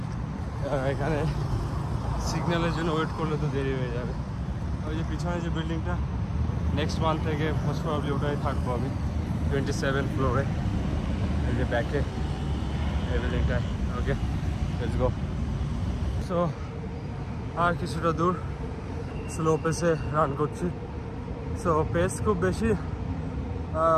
এখানে সিগন্যালের জন্য ওয়েট করলে তো দেরি হয়ে যাবে। ওই যে পিছনে যে বিল্ডিংটা, নেক্সট মান্থ থেকে মোস্ট প্রবাবলি ওটাই থাকবো আমি, 27 ফ্লোরে, এই যে ব্যাকে এই বিল্ডিংটায়। ওকে, লেটস গো। সো আর কিছুটা দূর স্লো পেসে রান করছি। সো পেস খুব বেশি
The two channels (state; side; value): identical; both; correlation 1.00